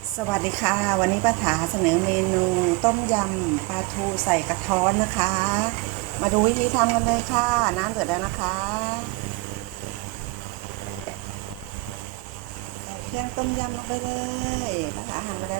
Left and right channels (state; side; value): quieter; left; 24.6 dB